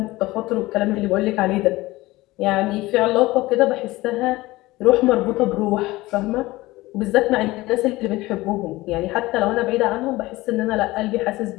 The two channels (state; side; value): quieter; right; 19.3 dB